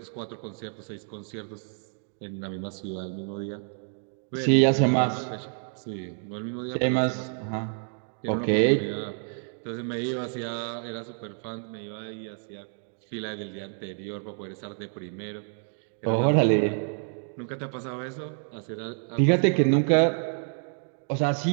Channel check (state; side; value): silent; left; 56 dB below the other